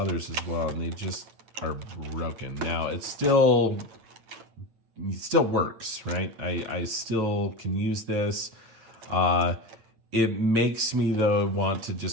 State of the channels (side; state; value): left; late; 8.8 ms